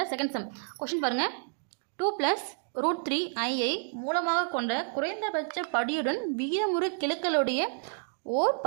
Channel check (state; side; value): silent; left; digital silence